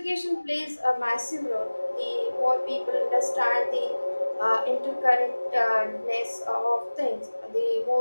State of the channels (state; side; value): inverted; both; correlation -1.00